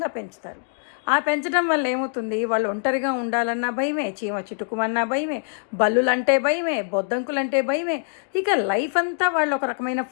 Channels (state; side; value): silent; right; digital silence